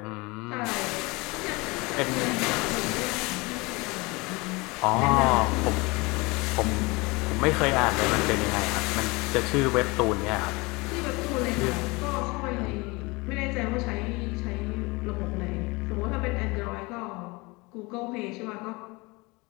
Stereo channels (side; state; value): right; quieter; 25.0 dB